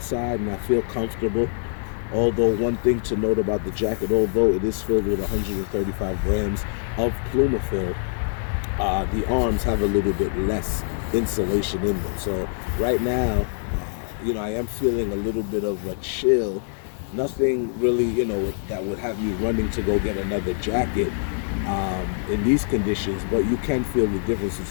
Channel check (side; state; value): right; silent; 62 dB below the other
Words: and I feel comfortable. Although one thing to note about the jacket, although it is filled with 135 grams of Plumafill, the arms have a little bit less insulation in them. So right now, you know, I am feeling a little bit of a chill. Nothing really, you know, that would have me running to go get another jacket in these conditions, but you can feel the difference